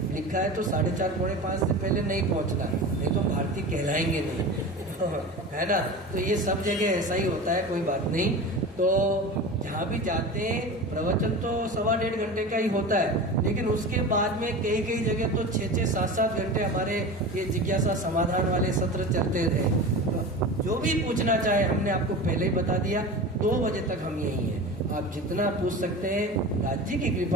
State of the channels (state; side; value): normal; both; correlation 0.31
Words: लिखा है तो 4:30 पौने 5 से पहले नहीं पहुंचना, नहीं तो भारतीय कहलाएंगे नहीं। है ना? तो ये सब जगह ऐसा ही होता है, कोई बात नहीं। तो जहाँ भी जाते हैं, प्रवचन तो 1.25 घंटे का ही होता है, लेकिन उसके बाद में कई जगह तो 6-6, 7-7 घंटे हमारे ये जिज्ञासा समाधान वाले सत्र चलते रहे। तो जो भी पूछना चाहे, हमने आपको पहले ही बता दिया, 2 बजे तक हम यही हैं। आप जितना पूछ सकते हैं, राज्य की